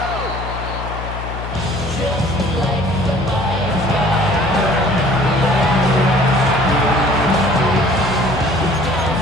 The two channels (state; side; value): noise; left; hum, 8 dB below the sound